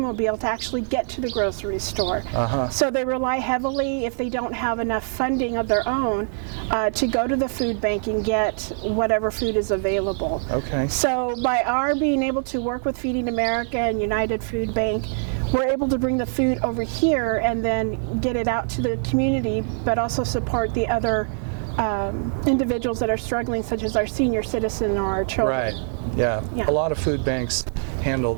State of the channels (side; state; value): left; silent; 63 dB below the other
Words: to actually get to the grocery store. So they rely heavily, if they don't have enough funding of their own, to go to the food bank and get whatever food is available. Okay. So by our being able to work with Feeding America and United Food Bank, we're able to bring the food over here and then get it out to the community, but also support the other individuals that are struggling, such as our senior citizen or our children. Right. Yeah. Yeah. A lot of food banks handle